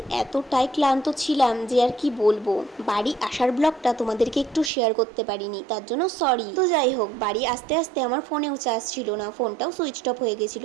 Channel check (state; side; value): drops out; left; at 4.7 s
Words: এতটাই ক্লান্ত ছিলাম যে আর কি বলবো। বাড়ি আসার ব্লগটা তোমাদেরকে একটু শেয়ার করতে পারিনি, তার জন্য সরি। তো যাই হোক, বাড়ি আসতে আসতে আমার ফোনেও চার্জ ছিল না, ফোনটাও সুইচ অফ হয়ে গেছিল,